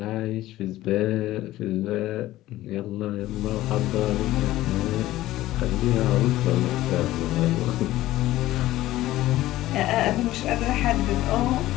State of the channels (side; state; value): right; quieter; 15.7 dB